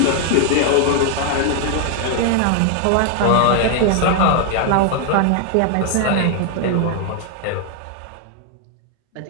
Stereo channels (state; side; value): different; both; correlation 0.00